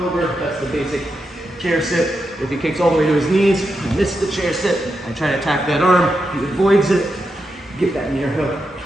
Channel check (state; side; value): normal; both; correlation 0.86